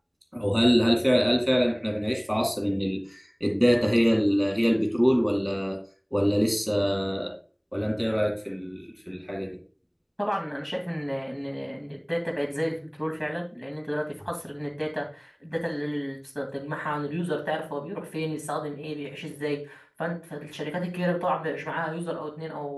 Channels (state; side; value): identical; both; correlation 1.00